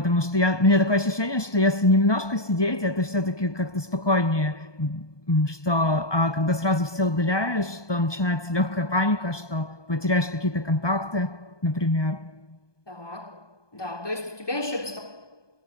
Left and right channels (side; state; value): right; late; 1.2 ms